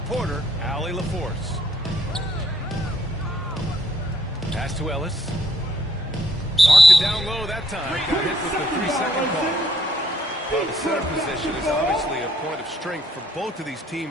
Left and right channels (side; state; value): both; normal; correlation 0.68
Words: Allie LaForce. Pass to Ellis. Marked it down low that time. Got hit with the 3-second call. Well, the center position is obviously a point of strength for both of these